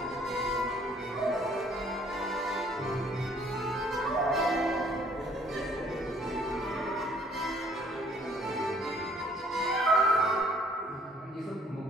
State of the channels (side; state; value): both; normal; correlation 0.60